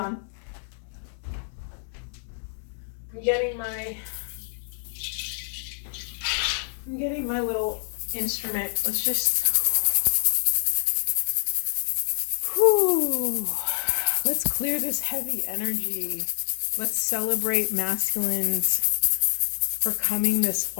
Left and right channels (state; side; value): silent; right; digital silence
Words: getting my little instrument. Let's just, let's clear this heavy energy. Let's celebrate masculines for coming this